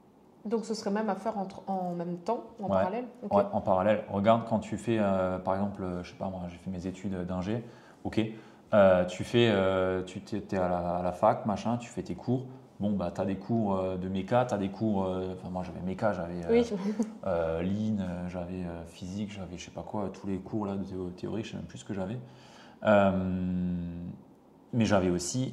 Donc, ce serait même à faire en même temps, en parallèle? Okay. Ouais, en parallèle. Regarde quand tu fais, par exemple, je sais pas moi, j'ai fait mes études d'ingé, ok. Tu es à la fac, machin, tu fais tes cours. Bon, tu as des cours de méca, tu as des cours. Moi, j'avais méca, j'avais lean, j'avais physique, j'avais je sais pas quoi, tous les cours là, de théorie, je sais même plus ce que j'avais. Mais j'avais aussi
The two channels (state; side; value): identical; both; correlation 1.00